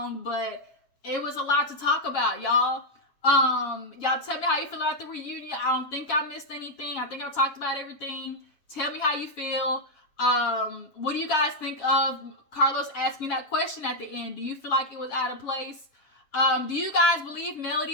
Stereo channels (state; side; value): late; right; 7.3 ms